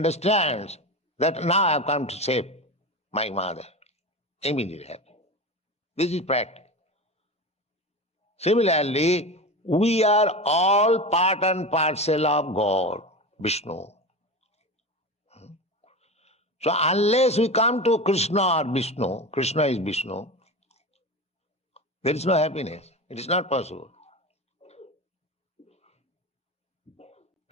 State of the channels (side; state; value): both; normal; correlation 0.26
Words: that now I have come to save my mother. Immediately happy. This is practice. Similarly, we are all part and parcel of God, Vishnu. So unless we come to Krishna or Vishnu, Krishna is Vishnu, there is no happiness. It is not possible.